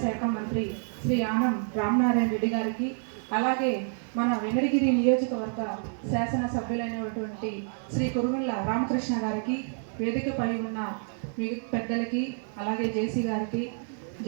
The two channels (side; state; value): left; silent; 59 dB below the other